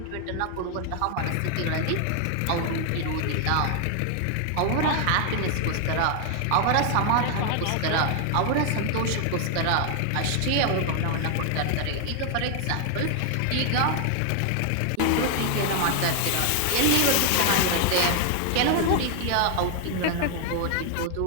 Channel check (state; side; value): different; both; correlation 0.00